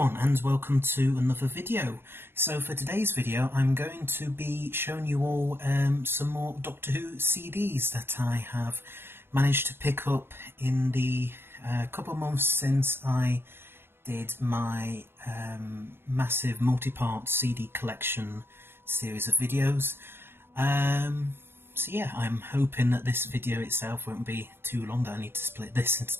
and welcome to another video. So for today's video I'm going to be showing you all some more Doctor Who CDs that I have managed to pick up in the couple of months since I did my massive multi-part CD collection series of videos. So yeah, I'm hoping that this video itself won't be too long, that I need to split this into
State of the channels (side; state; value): left; late; 0.11 ms